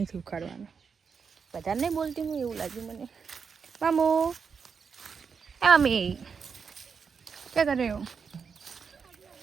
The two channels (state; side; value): quieter; left; 6.0 dB